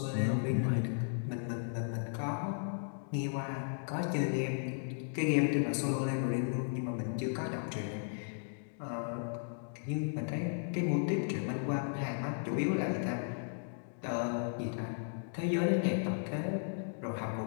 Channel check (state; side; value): silent; right; digital silence